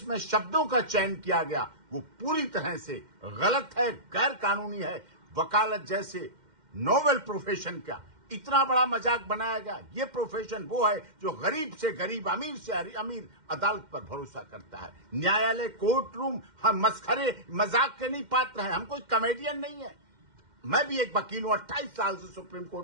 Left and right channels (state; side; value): late; left; 2.1 ms